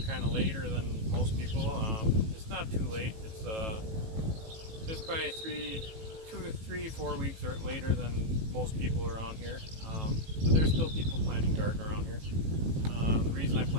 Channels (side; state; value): left; late; 18 ms